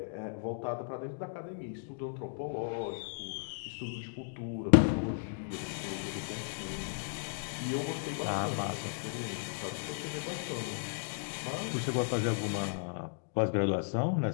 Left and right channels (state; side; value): silent; right; digital silence